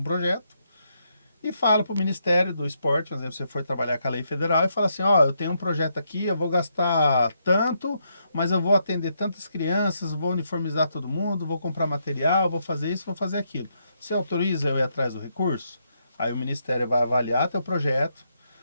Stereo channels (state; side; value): inverted; both; correlation -0.78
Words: projeto e fala para o Ministério do Esporte, por exemplo, você for trabalhar com a lei federal e fala assim, eu tenho um projeto aqui, eu vou gastar tanto, mas eu vou atender tantas crianças, vou uniformizar todo mundo, vou comprar material, vou fazer isso, vou fazer aquilo. Você autoriza eu ir atrás do recurso? Aí o Ministério vai avaliar teu projeto,